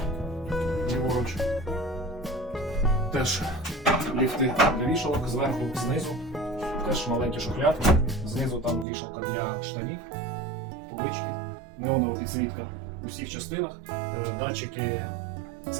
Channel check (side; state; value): left; drops out; at 8.8 s